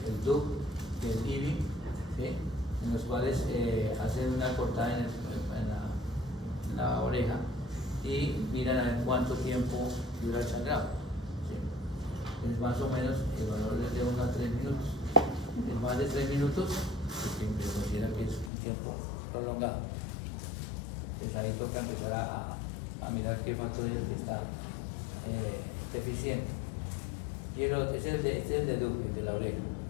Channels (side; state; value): right; drops out; at 18.5 s